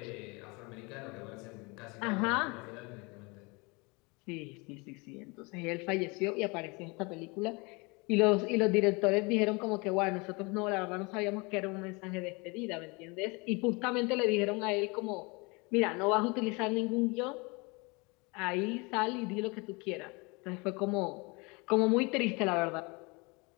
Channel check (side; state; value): right; quieter; 27.9 dB